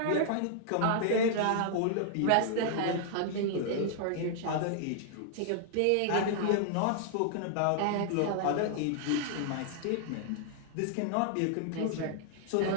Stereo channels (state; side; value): different; both; correlation -0.01